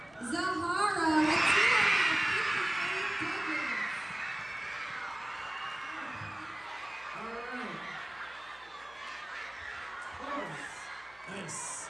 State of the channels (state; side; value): noise; left; hum, 28 dB below the sound